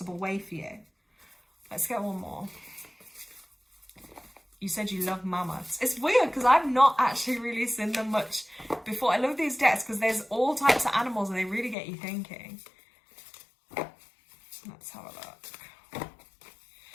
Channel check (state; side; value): drops out; right; at 11.8 s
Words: way for you. Let's get one more. You said you love mammoths. It's weird because I've not actually really seen them much before. I love these decks because there's all types of animals and they really get you thinking. Let's have a look.